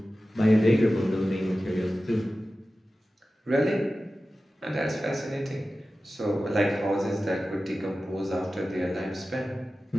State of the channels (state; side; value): normal; both; correlation 0.95